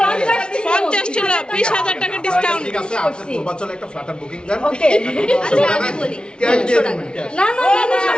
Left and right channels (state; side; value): late; right; 0.056 ms